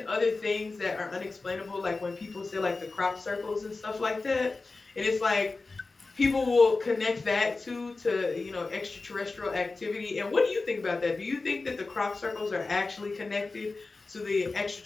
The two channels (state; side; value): quieter; right; 3.7 dB